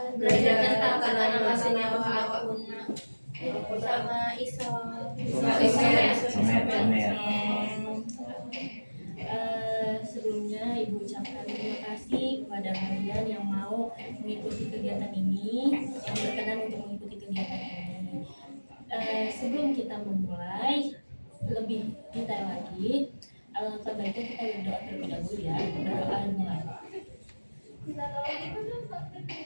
tentang tata senyawa apapun sama iso. Sebelumnya Ibu ucapkan terima kasih kepada kalian yang mau mengikuti kegiatan ini, yang berkenan untuk mengikuti kegiatan ini. Sebelum kita memulai lebih detail lagi, alangkah baiknya kita berdoa terlebih dahulu ya. Berdoa mulai. Adalah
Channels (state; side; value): inverted; both; correlation -1.00